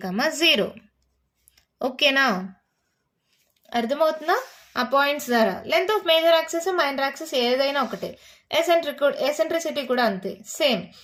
ఓకేనా, అర్థమవుతుందా. ఆ పాయింట్స్ ద్వారా length of major axis minor axis ఏదైనా ఒకటే. ఎసెంట్రిసిటీ కూడా అంతే, same.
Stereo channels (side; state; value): both; identical; correlation 1.00